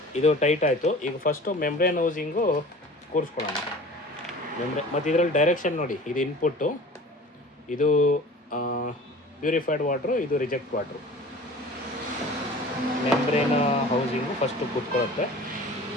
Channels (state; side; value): normal; both; correlation 0.42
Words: ಇದು ಟೈಟ್ ಆಯಿತು. ಈಗ ಫಸ್ಟು ಮೆಮ್ರೇನ್ ಹೌಸಿಂಗು ಕೂರಿಸ್ಕೊಳ್ಳೋಣ. ಮತ್ತು ಇದರಲ್ಲಿ ಡೈರೆಕ್ಷನ್ ನೋಡಿ, ಇದು ಇನ್ಪುಟ್ಟು, ಇದು ಪ್ಯೂರಿಫೈಡ್ ವಾಟ್ರು, ಇದು reject water. Membrane housing first ಕೂತ್ಕೊಳ್ಳುತ್ತೆ.